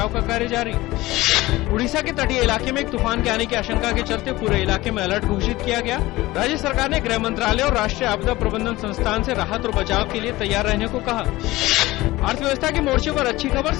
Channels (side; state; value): right; quieter; 18.7 dB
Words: का कार्य जारी। उड़ीसा के तटीय इलाके में एक तूफान के आने की आशंका के चलते पूरे इलाके में अलर्ट घोषित किया गया। राज्य सरकार ने गृह मंत्रालय और राष्ट्रीय आपदा प्रबंधन संस्थान से राहत और बचाव के लिए तैयार रहने को कहा। अर्थव्यवस्था के मोर्चे पर अच्छी खबर,